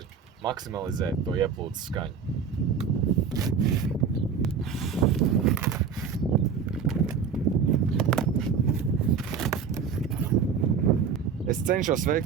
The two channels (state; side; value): quieter; left; 6.4 dB